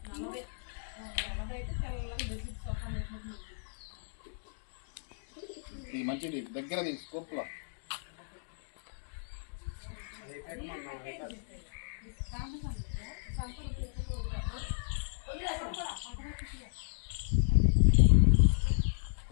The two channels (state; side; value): silent; right; digital silence